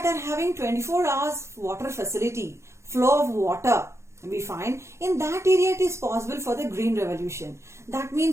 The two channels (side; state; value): left; late; 0.13 ms